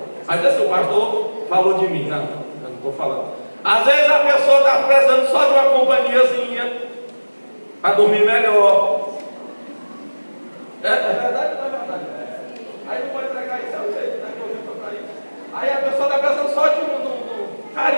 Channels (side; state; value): both; inverted; correlation -1.00